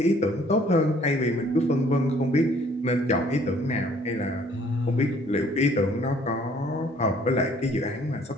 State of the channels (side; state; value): both; normal; correlation 0.59